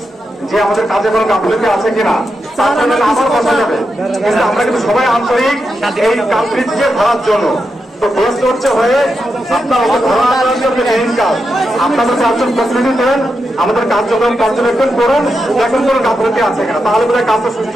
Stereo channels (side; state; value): both; normal; correlation 0.87